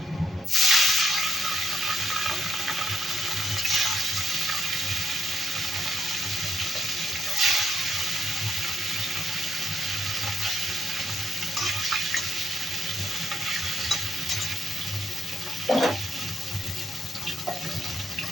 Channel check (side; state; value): both; normal; correlation 0.74